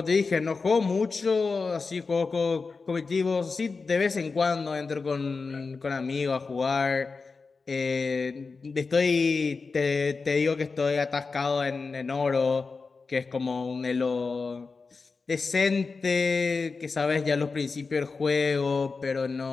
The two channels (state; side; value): quieter; right; 4.4 dB